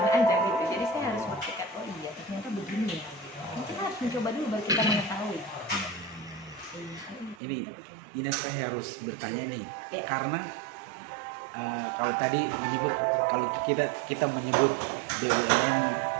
aja gitu. Jadi saya harus berpikir, oh iya ternyata begini ya. Kita harus mencoba dulu baru kita mengetahui. Ini saya harus bertanya nih, karena kalau tadi menyebut, kalau kita menyebut BUMN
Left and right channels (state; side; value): drops out; left; at 7.4 s